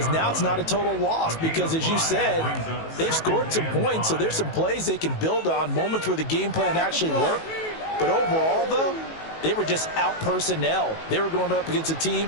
now it's not a total loss because, as you said, they've scored some points, so there's some plays they can build on, moments where the game plan actually worked. But overall, though, they were just out personnel. They were going up against a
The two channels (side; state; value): right; late; 19 ms